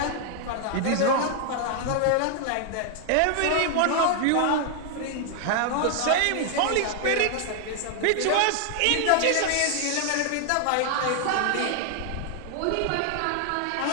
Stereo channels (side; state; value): both; different; correlation 0.00